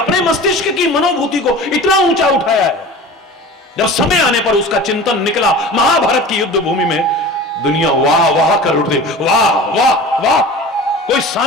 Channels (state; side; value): normal; both; correlation 0.37